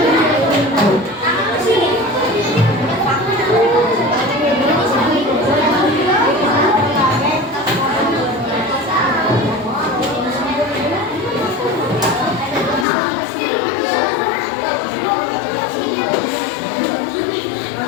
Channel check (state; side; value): drops out; right; at 12.9 s